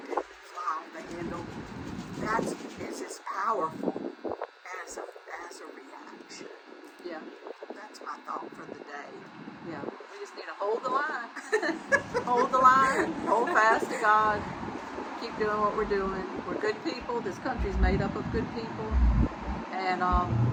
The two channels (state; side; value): identical; both; correlation 1.00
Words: fly off the handle, that's as powerful as a reaction. Yeah. That's my thought for the day. Yeah. We just need to hold the line. Hold the line. Hold fast to God. Keep doing what we're doing. We're good people. This country's made up of good people. And